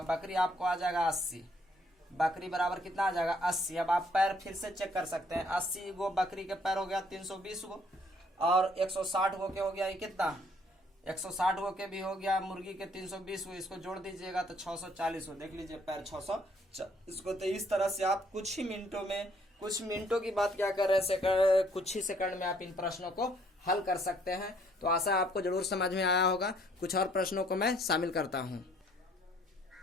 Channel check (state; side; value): normal; both; correlation 0.64